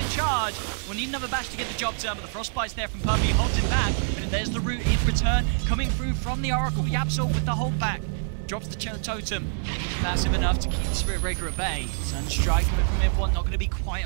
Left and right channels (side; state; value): left; silent; digital silence